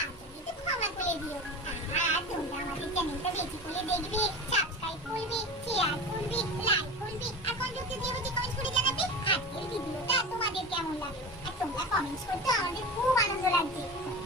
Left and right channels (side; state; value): both; normal; correlation 0.30